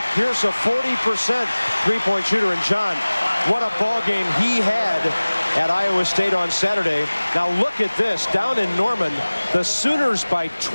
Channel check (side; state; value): both; inverted; correlation -1.00